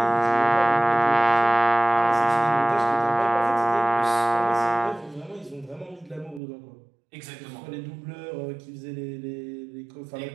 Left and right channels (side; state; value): left; drops out; at 6.4 s